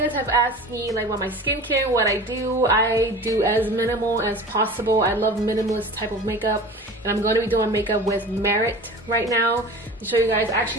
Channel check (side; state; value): both; normal; correlation 0.37